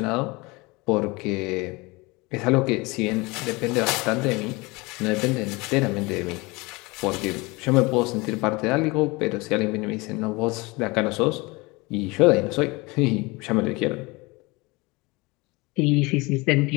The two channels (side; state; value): right; quieter; 24.6 dB